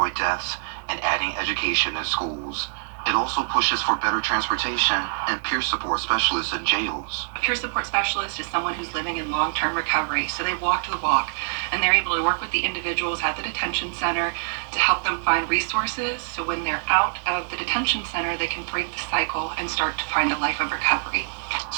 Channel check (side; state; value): left; silent; digital silence